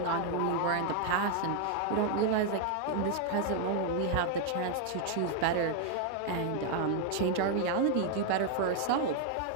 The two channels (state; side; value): different; both; correlation 0.00